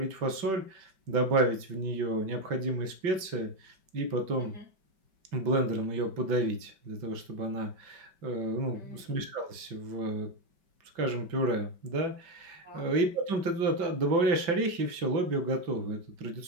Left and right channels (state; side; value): late; left; 5.2 ms